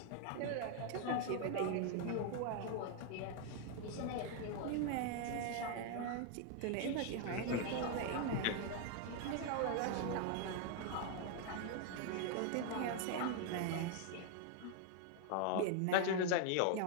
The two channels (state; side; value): different; both; correlation 0.00